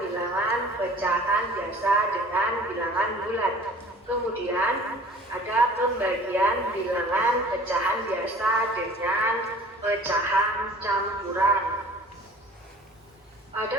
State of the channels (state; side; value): normal; both; correlation 0.47